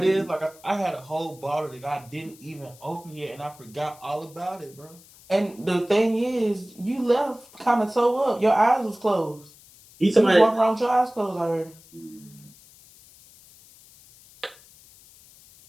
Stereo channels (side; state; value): left; noise; hiss, 24 dB below the sound